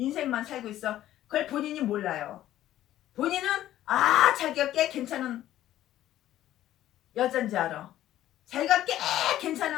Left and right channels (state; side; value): quieter; right; 13.2 dB